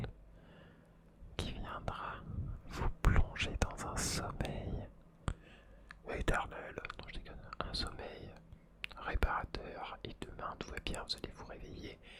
qui viendra vous plonger dans un sommeil éternel, non je déconne, un sommeil réparateur, et demain tout va bien, vous allez vous réveiller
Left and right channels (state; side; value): identical; both; correlation 1.00